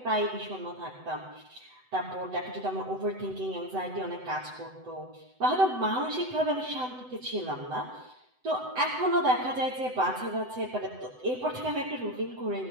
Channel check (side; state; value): left; late; 7.9 ms